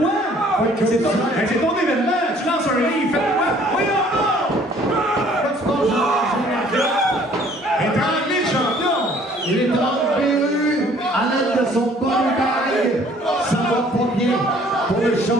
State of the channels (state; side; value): normal; both; correlation 0.57